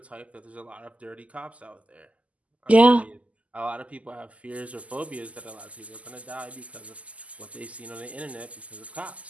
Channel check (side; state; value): left; late; 0.069 ms